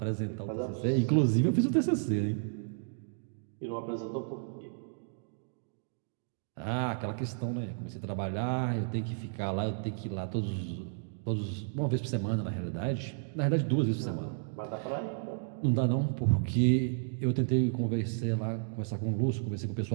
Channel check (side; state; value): left; silent; digital silence